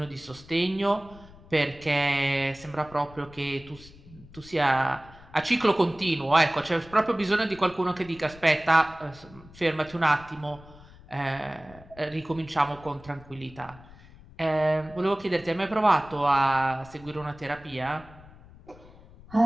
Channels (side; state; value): left; noise; rumble, 21 dB below the sound